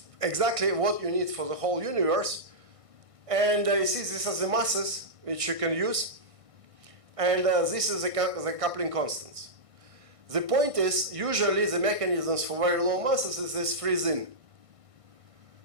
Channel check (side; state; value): left; late; 1.6 ms